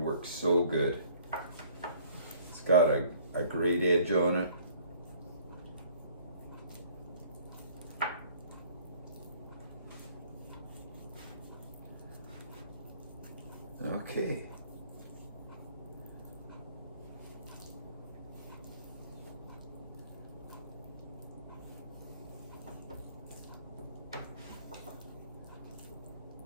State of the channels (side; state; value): both; inverted; correlation -0.57